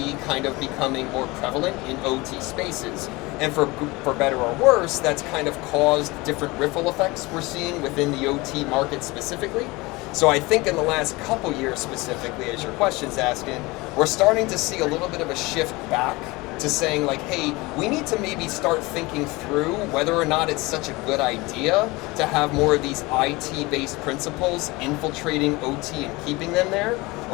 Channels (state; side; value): quieter; right; 22.9 dB